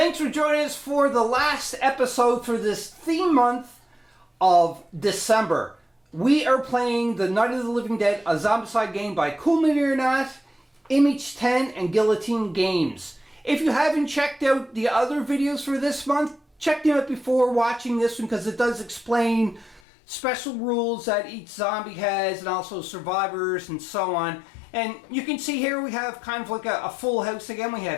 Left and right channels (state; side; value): drops out; right; at 19.8 s